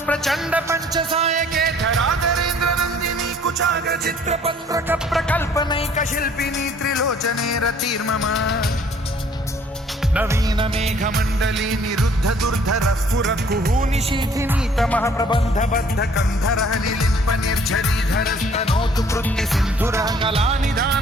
प्रचण्ड पञ्चसायके धराधरेन्द्र नन्दिनी कुचाग्र चित्रपत्रक प्रकल्पनैक शिल्पिनी त्रिलोचने रतिर्मम नवीन मेघमण्डली निरुद्ध दुर्धर स्फुर कुहूनिशीथिनी तमः प्रबन्ध बद्ध कन्धरः निलिम्प निर्झरीधरस्तनोतु कृत्ति सिन्धुरः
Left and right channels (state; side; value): normal; both; correlation 0.57